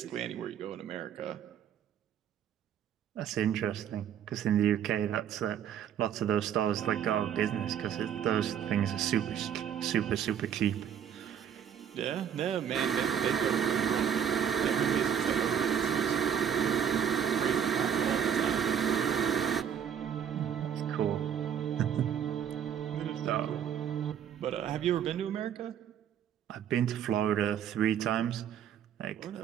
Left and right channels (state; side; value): quieter; left; 8.7 dB